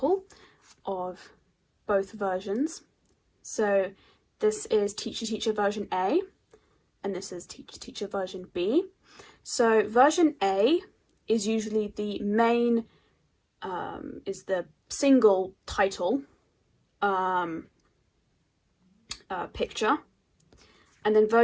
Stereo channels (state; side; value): identical; both; correlation 1.00